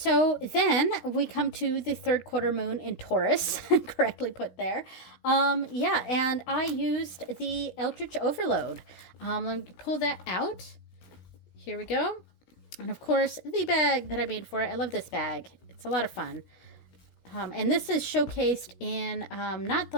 then we come to the third quarter moon in Taurus, correctly put there. Yeah, and I used the Eldritch Overload. Let me pull that out. Here we go. And of course, the bag that I made for it. I love this bag. It's a lot of fun. And this is showcased in not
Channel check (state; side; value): late; right; 16 ms